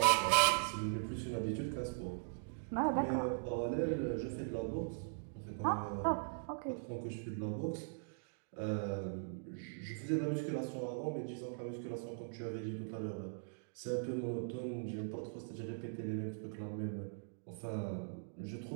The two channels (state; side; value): silent; left; digital silence